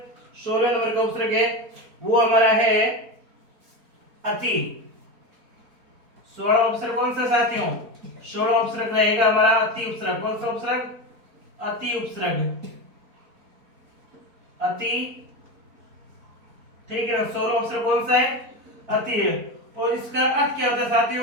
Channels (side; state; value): left; late; 4.3 ms